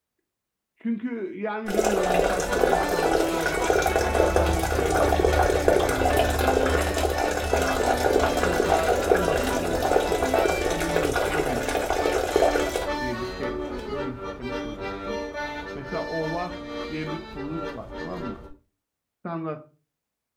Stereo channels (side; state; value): both; identical; correlation 1.00